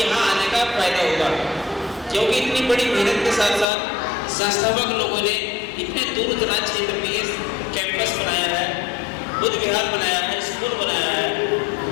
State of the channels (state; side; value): drops out; right; at 3.7 s